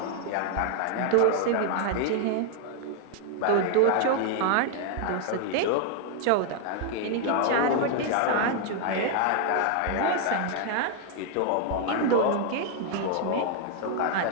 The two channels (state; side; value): different; both; correlation 0.00